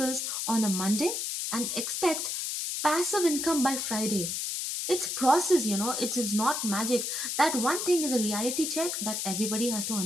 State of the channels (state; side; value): noise; left; hiss, 2 dB below the sound